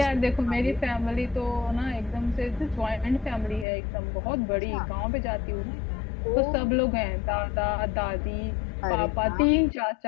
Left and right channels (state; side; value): drops out; right; at 3.7 s